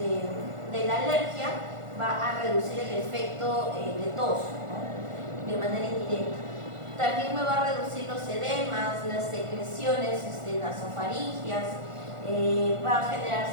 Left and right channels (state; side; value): late; left; 1.4 ms